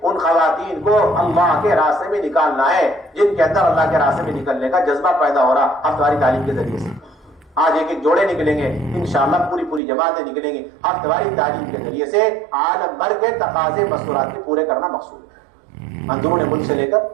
ان خواتین کو اللہ کے راستے میں نکالنا ہے جن کے اندر اللہ کے راستے میں نکلنے کا جذبہ پیدا ہو رہا ہفتہ واری تعلیم کے ذریعے سے۔ آج ایک جوڑے نکلیں گے، انشاءاللہ پوری جماعتیں نکلیں گی ہفتہ واری تعلیم کے ذریعے سے۔ عالم بھر کے تقاضے مستورات کے پورے کرنا مقصود ہے، اندرون ملک سے لے کر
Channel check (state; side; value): drops out; left; at 9.8 s